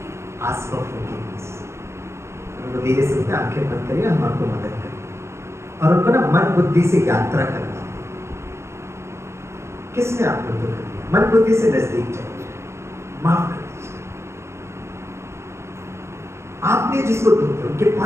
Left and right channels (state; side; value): late; left; 0.13 ms